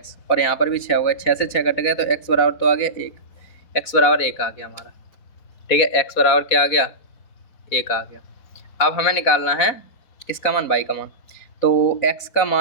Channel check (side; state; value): right; late; 4.3 ms